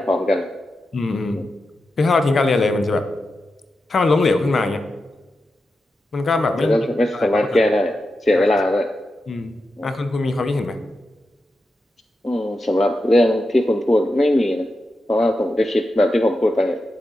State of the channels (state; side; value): normal; both; correlation 0.89